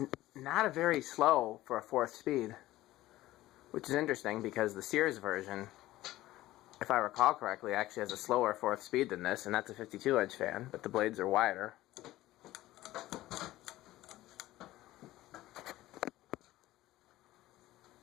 not a very slow for a fourth speed, which is interesting because the Sears version, if I recall correctly, actually has a slower fourth speed than this, and that's a 52-inch fan, but the blades are wider.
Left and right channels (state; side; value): quieter; right; 16.2 dB